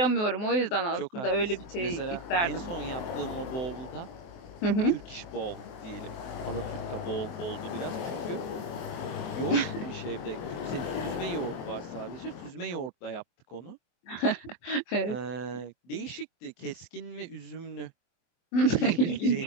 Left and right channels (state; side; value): late; right; 23 ms